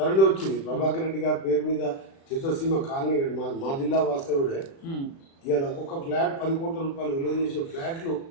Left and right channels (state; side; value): late; right; 36 ms